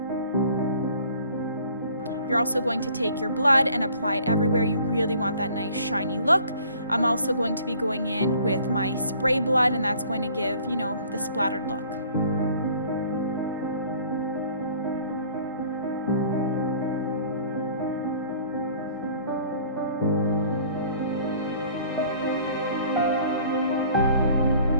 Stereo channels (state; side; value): inverted; both; correlation -0.53